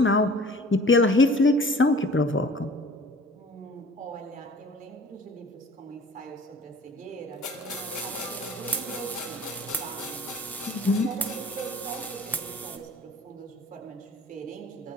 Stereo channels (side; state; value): both; normal; correlation 0.47